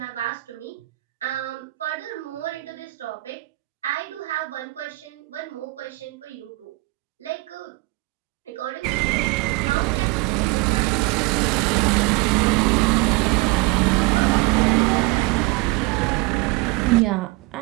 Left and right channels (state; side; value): quieter; left; 22.3 dB